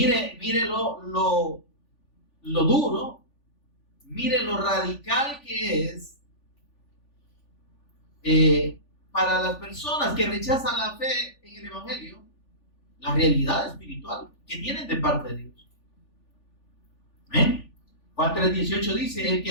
lo duro mire lo radical que es para las personas que rechazan la fe en el Evangelio, la realidad espiritual que tienen de parte de Dios. ¿Eh? Juan 3:18 dice: el que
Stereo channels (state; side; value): late; right; 3.4 ms